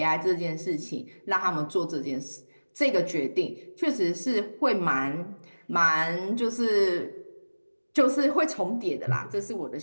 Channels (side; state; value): both; inverted; correlation -1.00